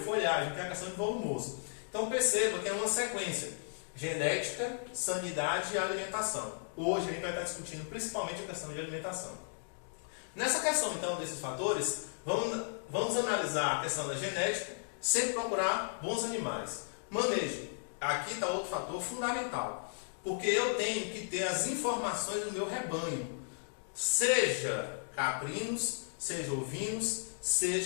que é a questão de volumoso. Então, perceba que é uma sequência: genética, sanidade e alimentação. Hoje a gente vai estar discutindo principalmente a questão de alimentação. Nessa questão, então, desses fatores, vamos analisar a questão da genética, sempre procurar bons animais. Manejo. Aqui está outro fator fundamental, porque eu tenho que ter as informações do meu rebanho, seja caprinos, seja ovinos,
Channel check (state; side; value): silent; right; digital silence